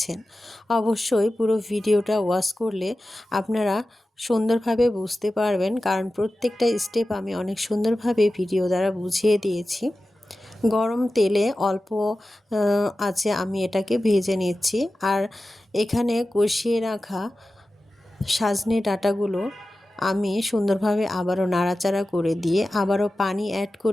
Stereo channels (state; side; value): normal; both; correlation 0.94